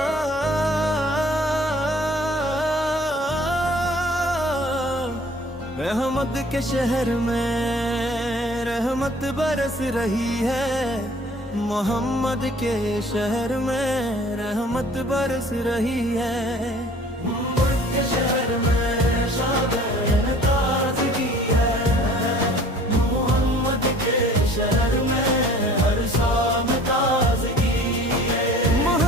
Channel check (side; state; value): both; normal; correlation 0.50